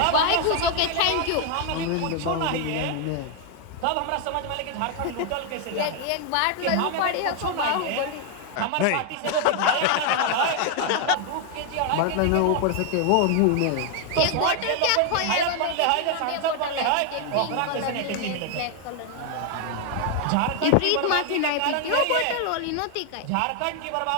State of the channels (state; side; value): different; both; correlation 0.00